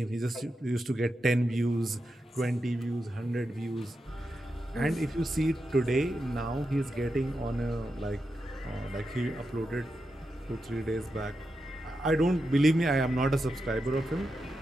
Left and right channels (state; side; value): normal; both; correlation 0.88